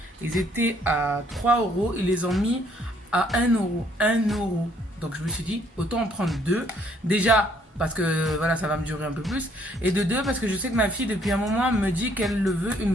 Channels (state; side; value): normal; both; correlation 0.65